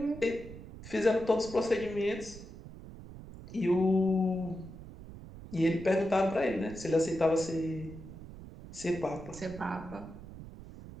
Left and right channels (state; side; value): noise; right; rumble, 14 dB below the sound